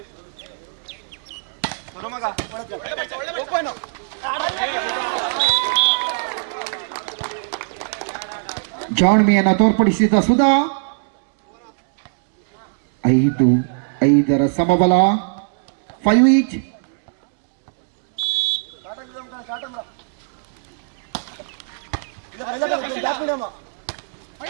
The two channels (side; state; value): left; silent; digital silence